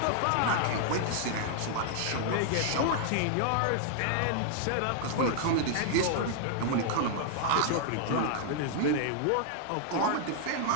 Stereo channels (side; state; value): both; different; correlation 0.00